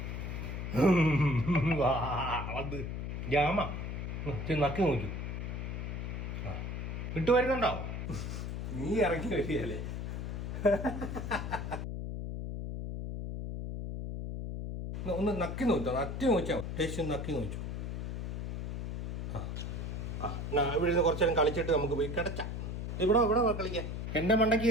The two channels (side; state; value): left; noise; hum, 4 dB below the sound